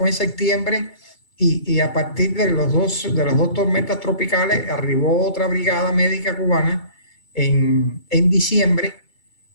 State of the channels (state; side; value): late; right; 3.3 ms